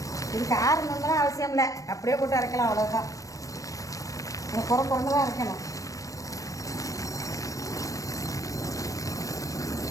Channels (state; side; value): late; right; 0.16 ms